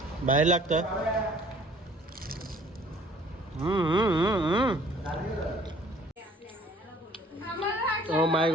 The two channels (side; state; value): both; normal; correlation 0.55